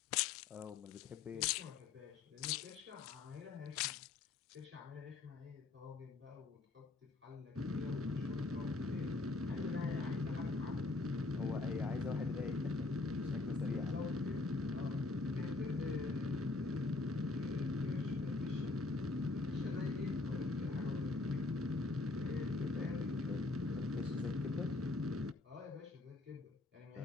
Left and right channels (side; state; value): right; quieter; 3.5 dB